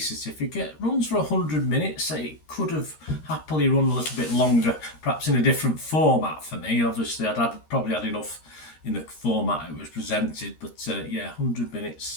Runs for 100 minutes. It could have happily run a little bit longer, perhaps in a different format for me. Obviously, probably had enough in the format it was presented, but 100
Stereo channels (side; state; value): right; late; 13 ms